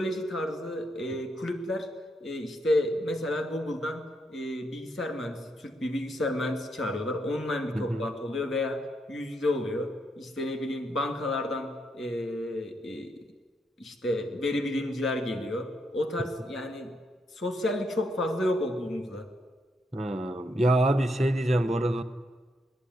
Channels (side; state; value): both; normal; correlation 0.78